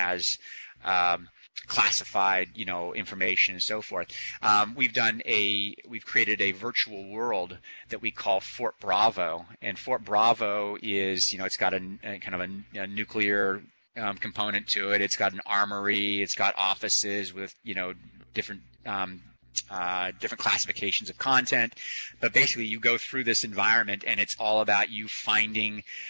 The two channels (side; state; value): both; inverted; correlation -1.00